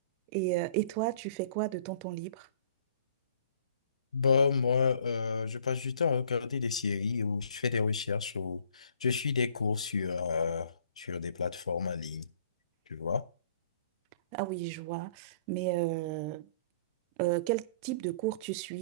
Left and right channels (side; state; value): both; inverted; correlation -0.56